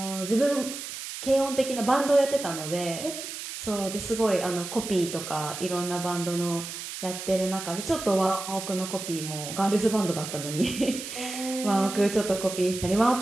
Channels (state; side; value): noise; right; hiss, 8 dB below the sound